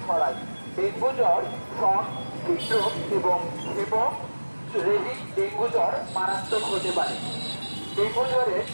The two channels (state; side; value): inverted; both; correlation -1.00